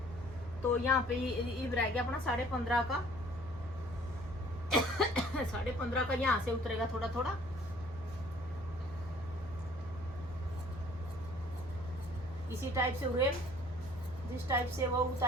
तो यहाँ पे ये रह गया अपना 15.5 का 15.5 का यहाँ से उतरेगा थोड़ा थोड़ा। इसी टाइप से उरेल जिस टाइप से वो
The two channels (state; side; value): noise; right; hum, 17 dB below the sound